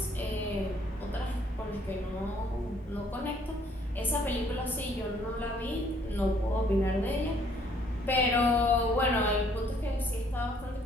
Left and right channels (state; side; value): normal; both; correlation 0.64